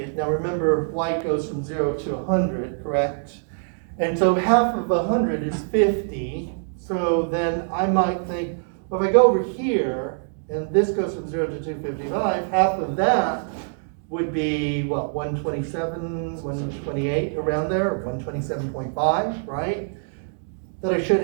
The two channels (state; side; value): silent; left; digital silence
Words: Now remember, white goes from 0 to 100, correct? And so half of 100 is 50. So then I might think, well, if I go over here, and this goes from 0 to 255, half of that would be, what, 127, 128, around there, 127.5, right? That I should